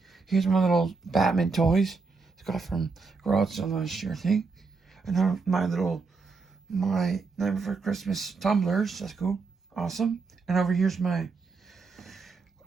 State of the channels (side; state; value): left; quieter; 4.4 dB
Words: little Batman toys. I got from Garage Sale last year, I think. And my Night Before Christmas tumblers. That's cool, awesome. And over here's my